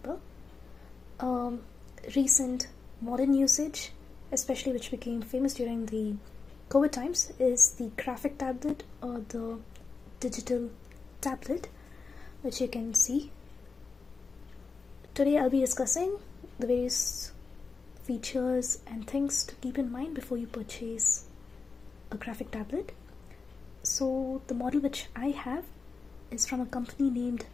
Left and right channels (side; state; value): right; quieter; 4.6 dB